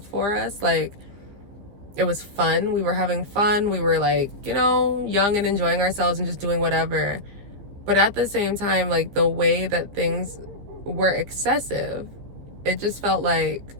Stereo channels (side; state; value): left; late; 15 ms